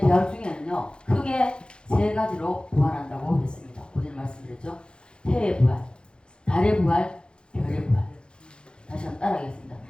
중에는요 크게 세 가지로 부활한다고 했습니다. 오늘 말씀드렸죠. 해의 부활, 달의 부활, 별의 부활. 다시 한번 따라하겠습니다.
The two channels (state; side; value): late; right; 0.052 ms